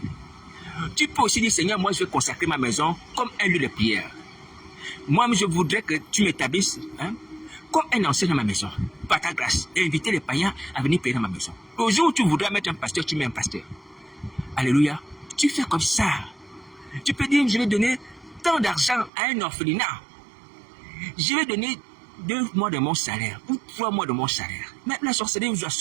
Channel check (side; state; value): left; drops out; at 19.1 s